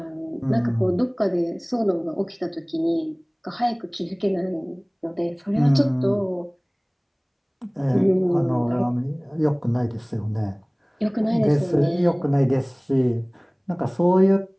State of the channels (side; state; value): both; identical; correlation 1.00